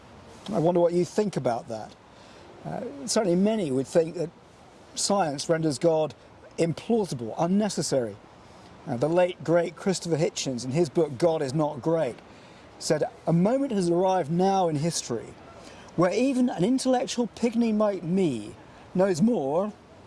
I wonder what you think about that. Certainly many would think that science renders God implausible, unnecessary. The late, great Christopher Hitchens, in his book God is Not Great, said, "A moment has arrived now in history where even an intellectual pygmy like me knows more,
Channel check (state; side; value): identical; both; correlation 1.00